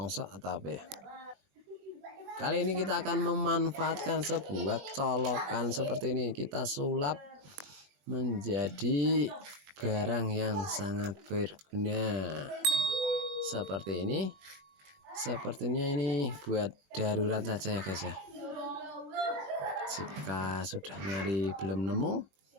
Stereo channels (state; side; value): late; left; 20 ms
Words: atau apa ya. Kali ini kita akan memanfaatkan sebuah colokan seperti ini. Kita sulap menjadi barang yang sangat berguna seperti ini. Sepertinya ini buat darurat saja ya guys ya. Jika sudah nyari belum nemu,